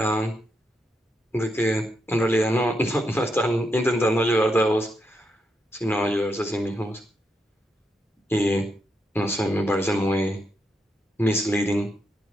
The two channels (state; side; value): normal; both; correlation 0.81